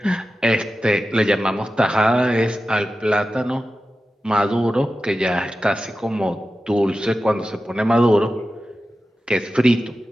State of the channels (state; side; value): normal; both; correlation 0.93